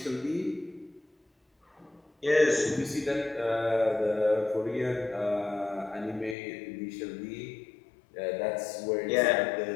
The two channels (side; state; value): right; drops out; at 6.4 s